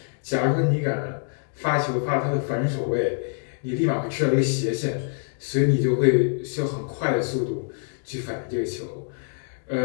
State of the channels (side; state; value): right; silent; 62 dB below the other